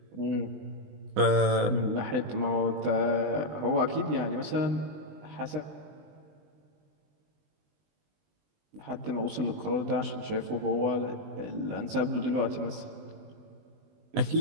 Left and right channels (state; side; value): late; left; 20 ms